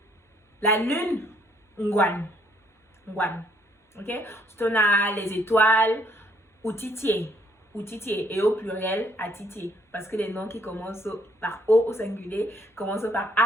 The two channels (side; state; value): both; normal; correlation 0.67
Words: La lune, ngwan. Ok? Ensuite, on a les étoiles, outitier. Et au pluriel, atitier. Parce que les noms qui commencent par O au singulier commencent par